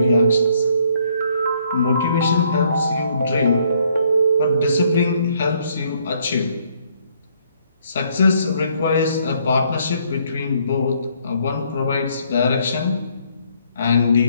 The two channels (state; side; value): inverted; both; correlation -0.67